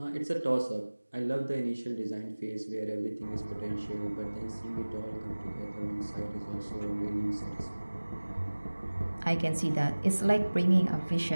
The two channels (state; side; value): inverted; both; correlation -1.00